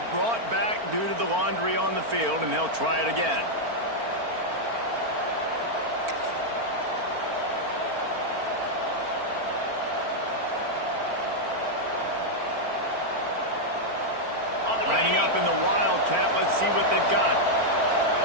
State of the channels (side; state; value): left; late; 4.4 ms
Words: brought back due to the laundry on the field, and they'll try it again. Lining up in the Wildcat, let's see what they've got.